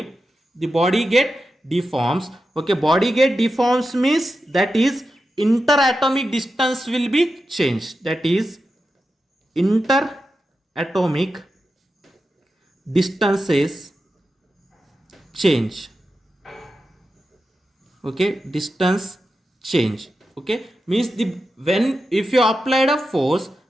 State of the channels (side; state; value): both; normal; correlation 0.90